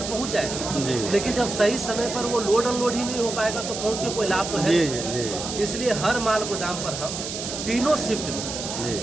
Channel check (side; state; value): right; noise; hiss, 6 dB below the sound